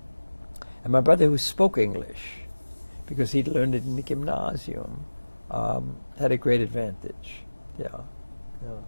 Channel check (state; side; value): inverted; both; correlation -1.00